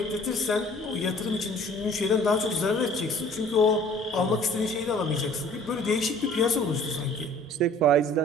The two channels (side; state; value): both; normal; correlation 0.52